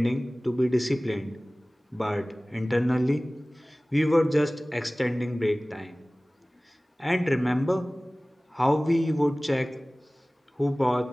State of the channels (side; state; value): both; normal; correlation 0.98